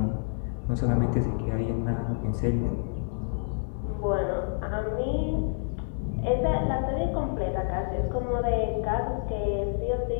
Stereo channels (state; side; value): silent; right; 59 dB below the other